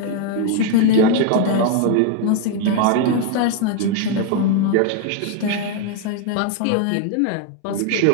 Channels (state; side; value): different; both; correlation 0.01